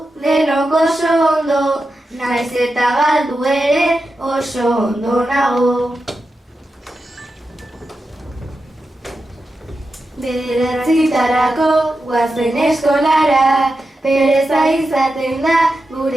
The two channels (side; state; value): both; normal; correlation 0.90